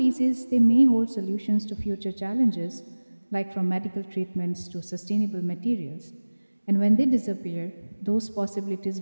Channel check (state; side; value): inverted; both; correlation -1.00